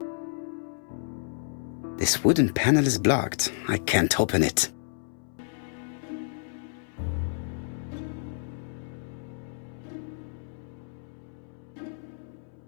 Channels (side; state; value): right; silent; 58 dB below the other